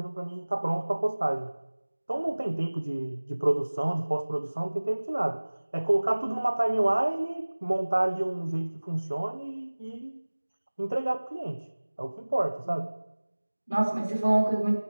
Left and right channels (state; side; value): inverted; both; correlation -1.00